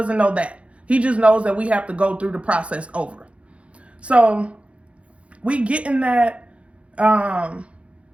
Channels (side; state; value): left; late; 0.062 ms